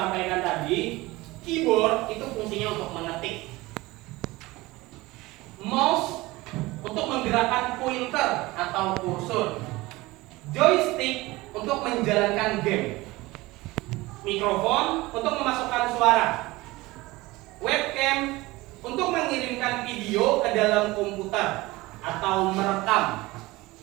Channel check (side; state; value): left; quieter; 20.5 dB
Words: fungsinya untuk mengetik. Mouse untuk menggerakkan pointer atau kursor. Joystick untuk menjalankan game. Mikrofon untuk memasukkan suara. Webcam untuk mengirimkan video ke dalam komputer atau merekam.